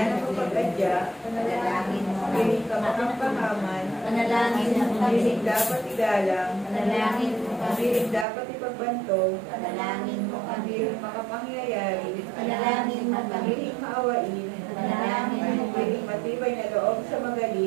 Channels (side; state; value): left; drops out; at 8.2 s